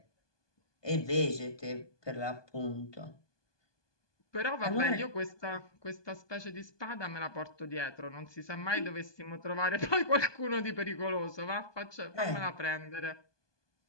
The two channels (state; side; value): late; right; 1.2 ms